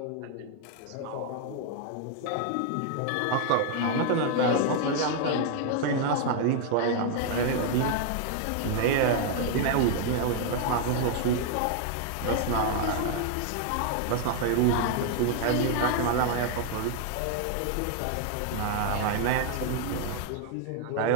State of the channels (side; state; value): both; different; correlation 0.00